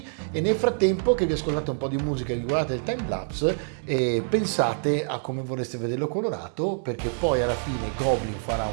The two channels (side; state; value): left; silent; digital silence